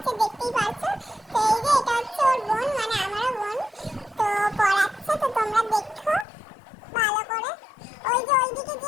দেখতেই পাচ্ছো। তো এই যে এটা হচ্ছে ওর বোন, মানে আমারও বোন, তো পড়াচ্ছে, তো তোমরা দেখো ভালো করে। ওই যে ওইদিকে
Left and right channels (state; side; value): drops out; right; at 6.2 s